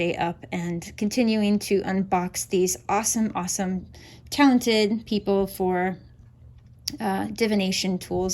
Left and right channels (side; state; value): both; identical; correlation 1.00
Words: up and continuing to unbox these awesome, talented people for divination